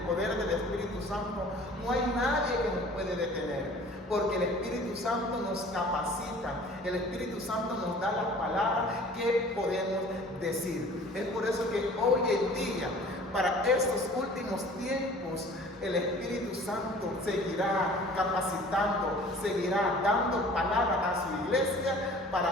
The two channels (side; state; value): both; normal; correlation 0.48